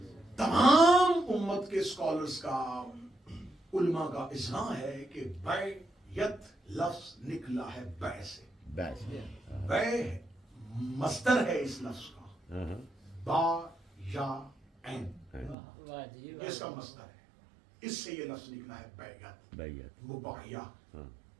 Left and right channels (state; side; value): drops out; left; at 15.6 s